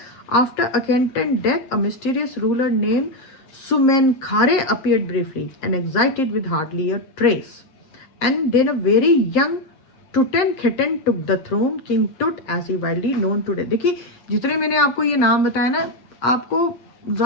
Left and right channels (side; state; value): right; late; 7.6 ms